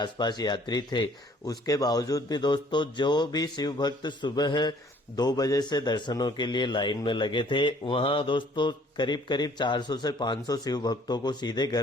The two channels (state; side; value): normal; both; correlation 0.58